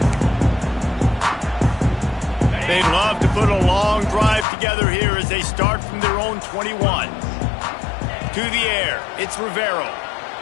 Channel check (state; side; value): drops out; right; at 4.5 s